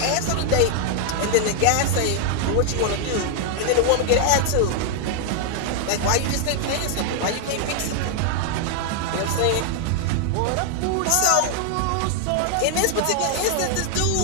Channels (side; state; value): both; different; correlation 0.00